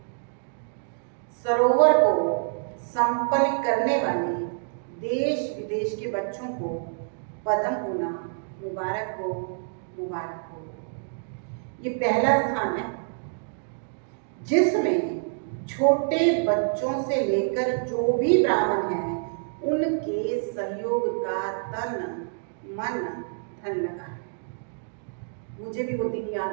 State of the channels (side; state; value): left; silent; digital silence